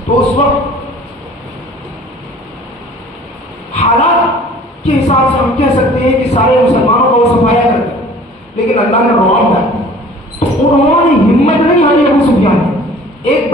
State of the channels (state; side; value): normal; both; correlation 0.49